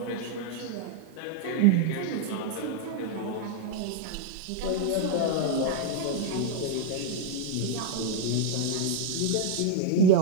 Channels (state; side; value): different; both; correlation 0.00